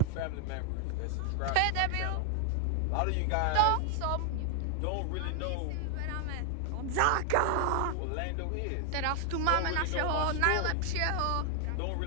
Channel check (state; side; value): different; both; correlation 0.00